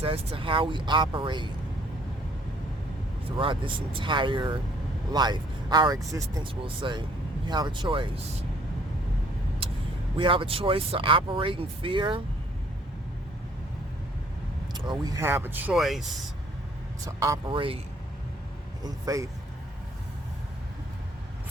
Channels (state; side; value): normal; both; correlation 0.61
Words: as to how we operate throughout this entire life. Our existence, we'll say. We have a choice. We have a choice to operate in fear, or we have a choice to operate in faith.